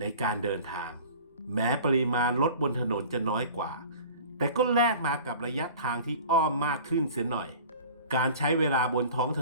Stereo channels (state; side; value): inverted; both; correlation -0.42